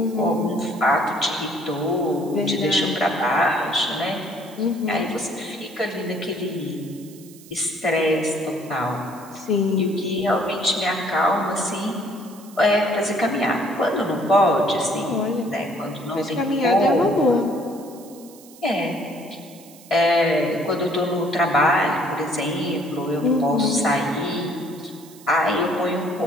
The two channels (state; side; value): noise; right; hiss, 22 dB below the sound